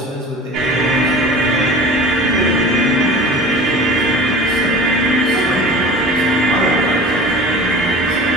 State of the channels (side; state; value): both; normal; correlation 0.39